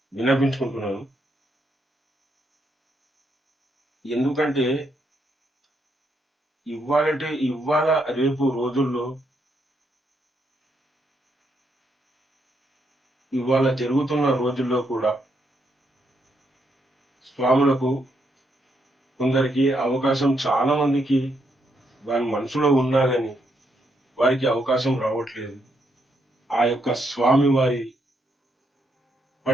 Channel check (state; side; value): normal; both; correlation 0.77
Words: విన్నపించుకుంటున్నాను. ఎందుకంటే ఇవాళ రేపు రోజుల్లో ఇవాళ జరుగుతున్న రోజుల్లో కూడా స్వాములకు కొందరికి అవకాశం, చాలా మందికి వారి మనసులో ఉన్నా కానీ వారికి అవకాశం రావట్లేదు. ఆ యొక్క స్వామి వారి